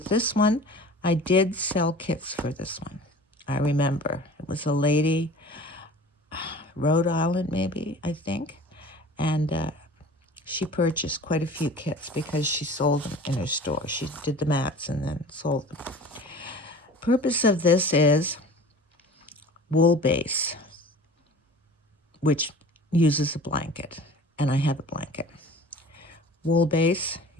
this one, I did sell kits for this one. I remember. It was a lady, Rhode Island maybe, I think. And she purchased quite a few kits because she sold them in her store. She did the mats and then sold them. Purpose of this is wool base, which uses a blanket, and I have a blanket. Wool base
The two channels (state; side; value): normal; both; correlation 0.42